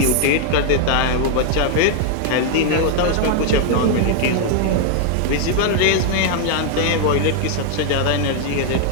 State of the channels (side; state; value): both; different; correlation 0.00